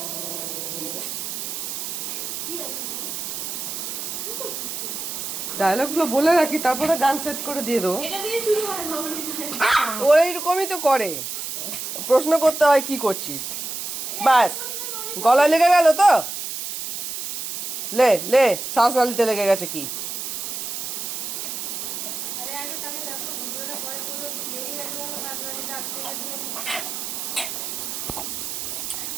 ডায়লগ গুলো বলে রাখি, তারপরে গান সেট করে দিয়ে দেবো। ও এইরকমই তো করে, প্রশ্ন করতে হয় কি করছিস, ব্যাস। গলায় লেগে গেল তো, লে লে, শ্বাস নালিতে লেগে গেছে কি?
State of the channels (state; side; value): noise; right; hiss, 5 dB below the sound